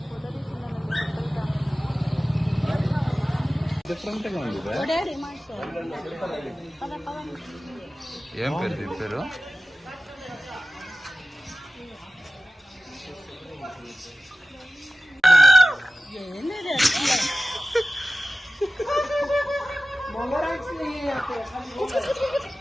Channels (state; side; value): normal; both; correlation 0.95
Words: డిఫరెంట్గా ఉంది. ఏం పేరు దీని పేరు?